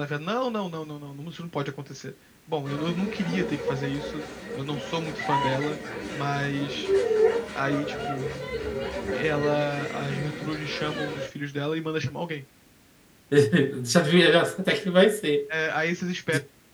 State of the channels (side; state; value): both; identical; correlation 1.00